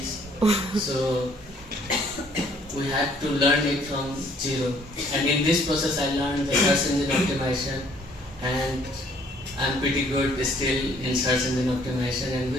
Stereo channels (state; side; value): normal; both; correlation 0.61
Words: So we had to learn it from zero. And in this process I learned the search engine optimization, and I'm pretty good still in search engine optimization, and